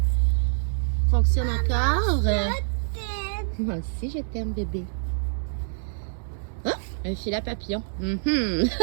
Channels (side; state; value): left; silent; 61 dB below the other